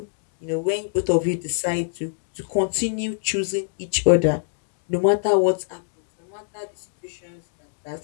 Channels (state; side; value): silent; right; digital silence